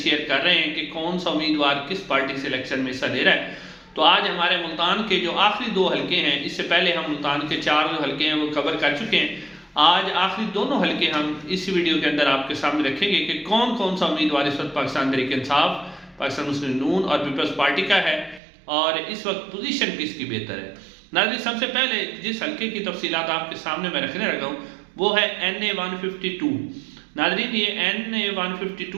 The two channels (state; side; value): drops out; left; at 18.4 s